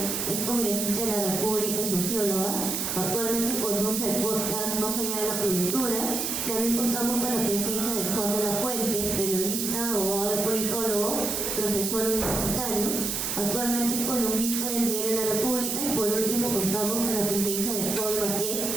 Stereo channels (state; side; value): noise; right; hiss, 1 dB below the sound